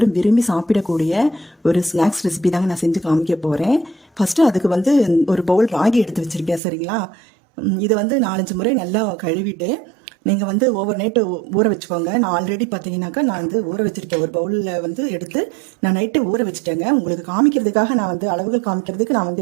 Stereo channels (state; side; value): drops out; left; at 6.6 s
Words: விரும்பி சாப்பிடக்கூடிய ஒரு ஸ்நாக்ஸ் ரெசிபி தாங்க நான் செஞ்சு காமிக்க போகிறேன். ஃபஸ்ட்டு அதுக்கு வந்து ஒரு பவுல் ராகி எடுத்து வச்சுருக்கேன். சரிங்களா? இதை வந்து 4-5 முறை நல்லா கழுவிட்டு நீங்கள் வந்து ஓவர் நைட்டு ஊற வச்சுக்கோங்க. நான் ஆல்ரெடி பார்த்தீங்கன்னாக்கா நான் வந்து ஊற வச்சுருக்கேன். ஒரு பவுலில் வந்து எடுத்து நான் நைட்டு ஊற வச்சுட்டேங்க. உங்களுக்கு காமிக்கிறதுக்காக நான் வந்து அளவுகள் காமிக்கிறதுக்கு நான்